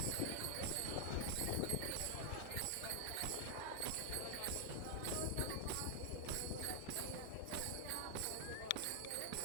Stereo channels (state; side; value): different; both; correlation 0.00